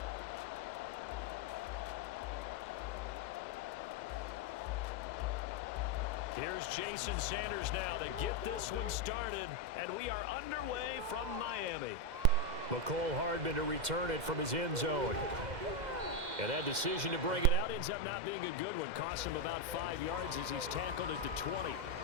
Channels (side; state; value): left; late; 2.0 ms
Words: Here's Jason Sanders now to get this one started. And we are underway from Miami. McCole Hardman to return it from his end zone. And that decision to bring it out ends up not being a good one. Costs him about 5 yards as he's tackled at the 20.